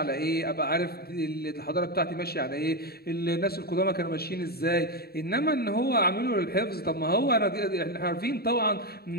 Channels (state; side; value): late; right; 0.45 ms